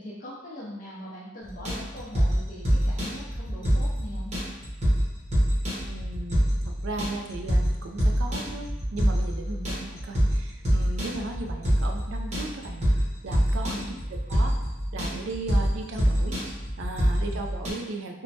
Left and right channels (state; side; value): normal; both; correlation 0.92